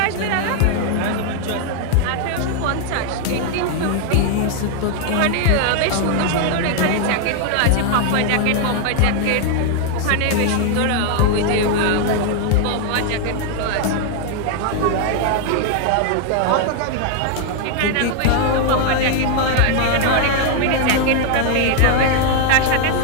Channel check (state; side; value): different; both; correlation 0.00